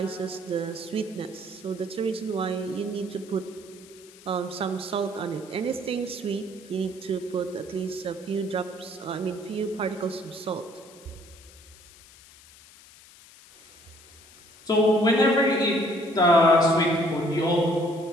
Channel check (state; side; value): noise; left; hiss, 23 dB below the sound